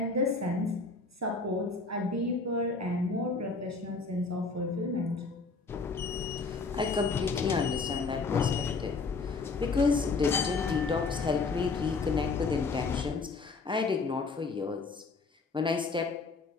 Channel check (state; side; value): quieter; right; 4.1 dB